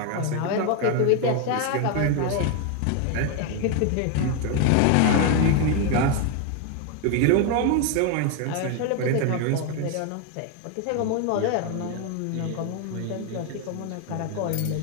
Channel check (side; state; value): both; different; correlation 0.01